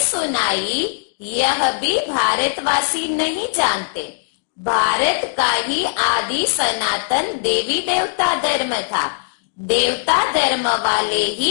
सुनाई यह भी भारतवासी नहीं जानते। भारत का ही आदि सनातन देवी देवता धर्म था। देवता धर्म वाले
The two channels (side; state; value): right; silent; digital silence